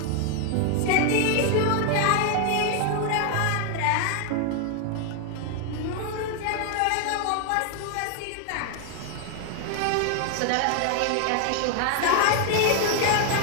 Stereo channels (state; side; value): different; both; correlation 0.00